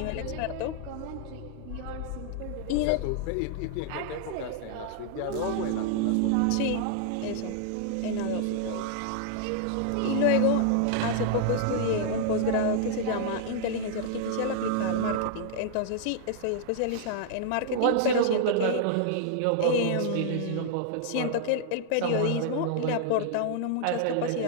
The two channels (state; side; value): different; both; correlation -0.01